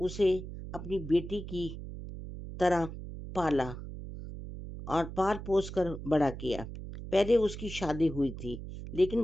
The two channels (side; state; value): right; noise; hum, 10 dB below the sound